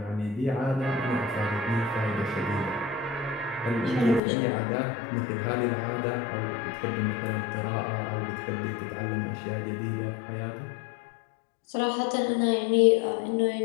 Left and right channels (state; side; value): drops out; right; at 4.2 s